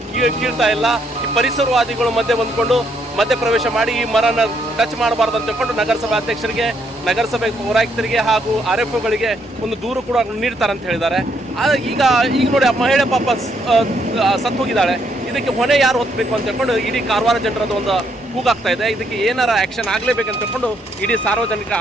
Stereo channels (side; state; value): both; normal; correlation 0.73